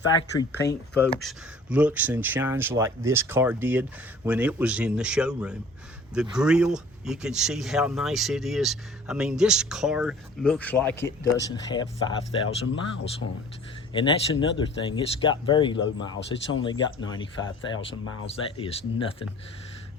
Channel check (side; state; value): both; normal; correlation 0.49